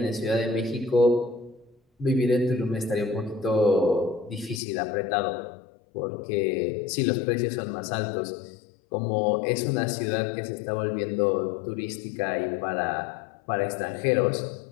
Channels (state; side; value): drops out; right; at 4.6 s